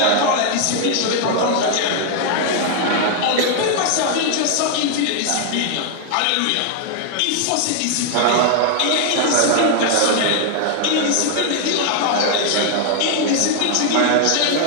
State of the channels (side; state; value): both; different; correlation 0.00